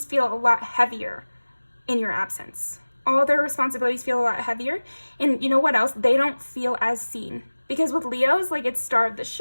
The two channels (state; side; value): inverted; both; correlation -1.00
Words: feel a lot heavier in your absence. All their responsibilities feel a lot heavier, and you know what else? They don't feel as seen, because with Leos, like, it's star of the